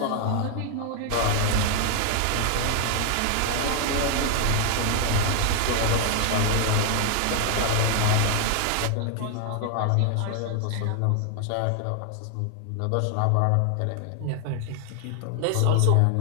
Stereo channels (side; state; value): both; different; correlation 0.00